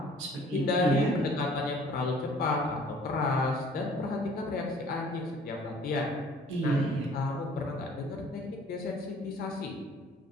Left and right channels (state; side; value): normal; both; correlation 0.53